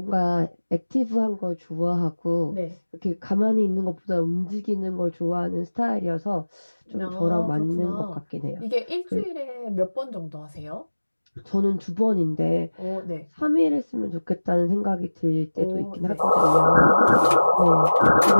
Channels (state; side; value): inverted; both; correlation -1.00